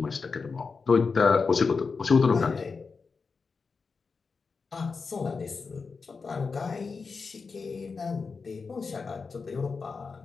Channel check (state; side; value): quieter; right; 4.8 dB